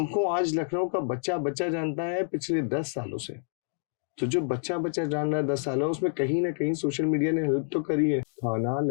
आज लखनऊ का बच्चा बच्चा जानता है पिछले 10 सालों से। तो जो बच्चा बच्चा जान रहा है 10 सालों, उसमें कहीं ना कहीं सोशल मीडिया ने हेल्प तो करी है। खाना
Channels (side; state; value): right; silent; 59 dB below the other